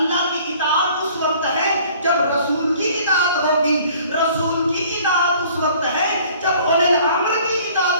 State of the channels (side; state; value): both; inverted; correlation -0.53